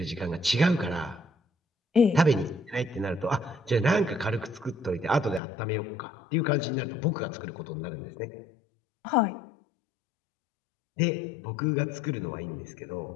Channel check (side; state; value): right; drops out; at 5.4 s